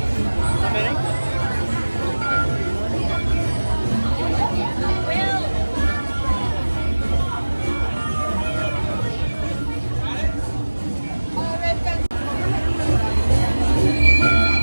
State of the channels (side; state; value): both; inverted; correlation -1.00